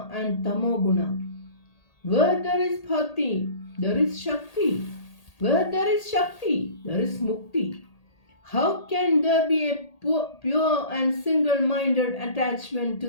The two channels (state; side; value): late; right; 1.8 ms